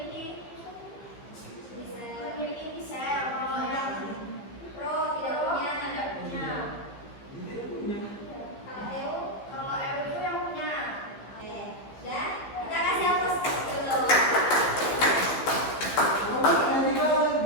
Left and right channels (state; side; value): late; right; 15 ms